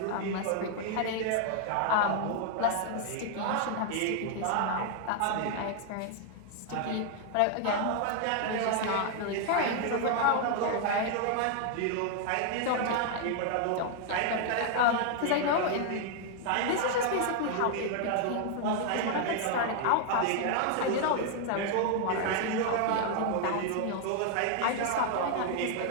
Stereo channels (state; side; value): different; both; correlation 0.00